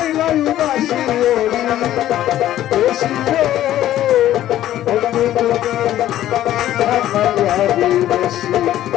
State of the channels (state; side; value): quieter; right; 13.0 dB